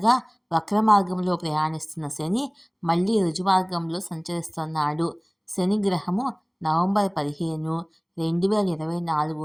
వక్ర మార్గంలో ప్రయాణిస్తున్న శని మళ్ళీ రుజుమార్గంలో సంచరిస్తున్నాడు. శని గ్రహము నవంబర్ 15,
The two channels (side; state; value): both; identical; correlation 1.00